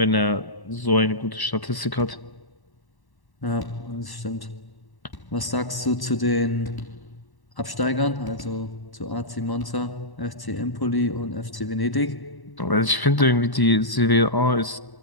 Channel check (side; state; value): right; late; 1.1 ms